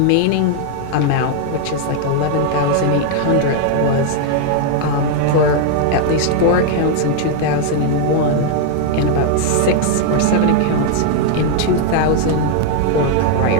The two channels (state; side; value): different; both; correlation 0.00